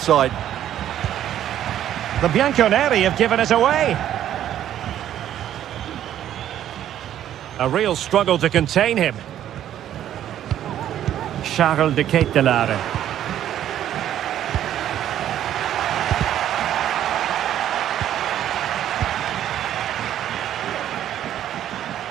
The Bianconeri have given it away. A real struggle to contain him. Charles de Ketelaere.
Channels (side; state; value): left; quieter; 11.2 dB